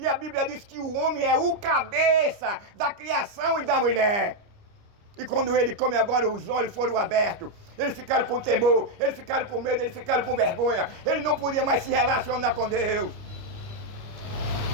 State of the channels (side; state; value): left; late; 29 ms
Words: a Bíblia diz que o homem é o cabeça da criação e da mulher. E quando ele come agora, os olhos foram abertos. Eles ficaram com temor, eles ficaram com medo, eles ficaram com vergonha. Ele não podia mais se relacionar com Deus.